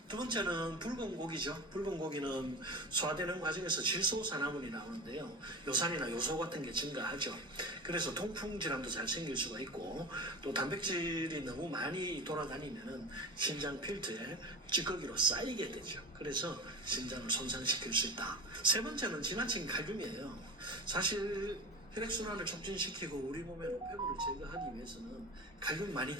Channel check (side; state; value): both; normal; correlation 0.29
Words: 두 번째는 붉은 고기죠. 붉은 고기는 소화되는 과정에서 질소산화물이 나오는데요. 요산이나 요소 같은 게 증가하죠. 그래서 통풍 질환도 잘 생길 수가 있고 또 단백질이 너무 많이 돌아다니면 신장 필터에 찌꺼기로 쌓이게 되죠. 그래서 신장을 손상시킬 수 있다. 세 번째는 지나친 칼륨이에요. 사실 혈액순환을 촉진시키고 우리 몸의 노폐물을 제거하기 위해서는 칼륨 많이